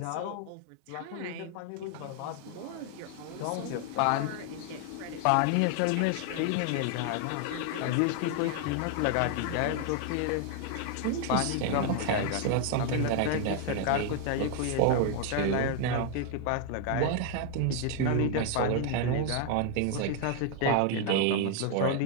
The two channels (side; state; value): both; different; correlation 0.00